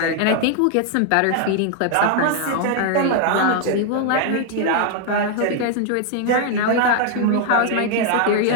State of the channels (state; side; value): different; both; correlation 0.00